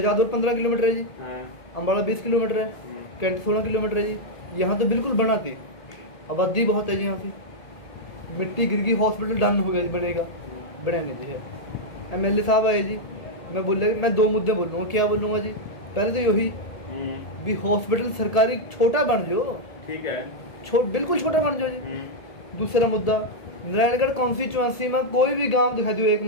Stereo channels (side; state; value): right; late; 1.7 ms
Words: 15 किलोमीटर है जी, अम्बाड़ा 20 किलोमीटर है, कैंट 16 किलोमीटर है जी, यहाँ तो बिल्कुल बनाती, आबादी बहुत है जी, यहाँ से मिट्टी गिर गई, हॉस्पिटल डन हो गया जी, बनेगा, बनाने जी है। एमएलए साहब आए जी, मैं बोले मैं 2 मुद्दे बोलूँगा, क्या बोलूँगा जी, पहले तो यही भी हॉस्पिटल सरकारी छोटा बन जाओ, ठीक है, बिल्कुल छोटा बन जाओ जी। दूसरा मुद्दा, नारायणगढ़ कॉन्स्टिट्यूएंसी में कोई भी गांव दिखा दो एक